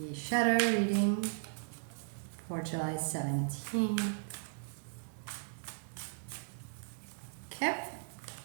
shadow reading for July 17th. Okay,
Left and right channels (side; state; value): left; silent; digital silence